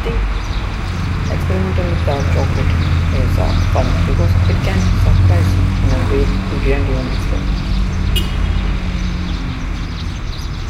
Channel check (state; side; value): identical; both; correlation 1.00